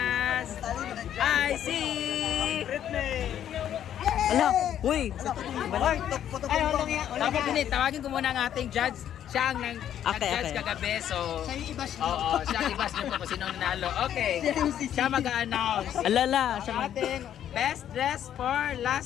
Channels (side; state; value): right; quieter; 10.4 dB